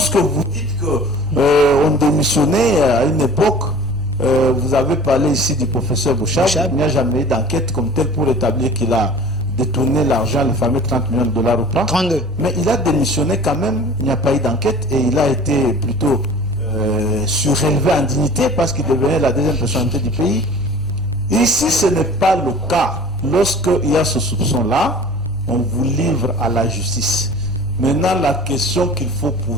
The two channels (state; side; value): normal; both; correlation 0.44